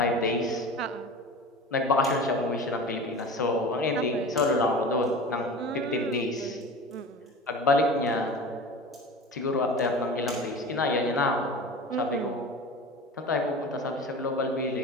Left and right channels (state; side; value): normal; both; correlation 0.35